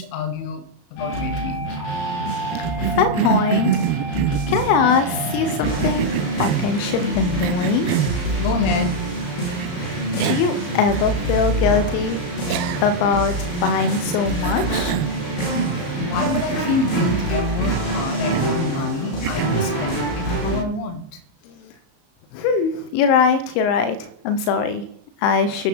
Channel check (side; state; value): right; late; 34 ms